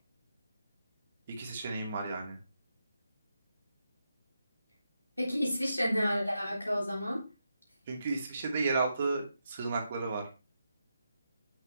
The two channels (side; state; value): both; inverted; correlation -0.85